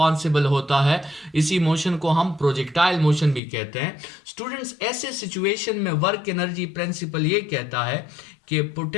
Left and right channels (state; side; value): drops out; right; at 3.4 s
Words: होता है, इसी मोशन को हम प्रोजेक्टाइल मोशन भी कहते हैं। स्टूडेंट्स ऐसे सिचुएशन में वर्क एनर्जी प्रिंसिपल ये कहता है कि